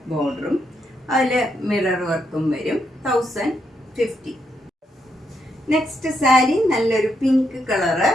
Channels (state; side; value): normal; both; correlation 0.79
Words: ബോർഡറും അതിൽ മിറർ വർക്കും വരും. 1050. നെക്സ്റ്റ് സാരി നല്ലൊരു പിങ്ക് കളറ്,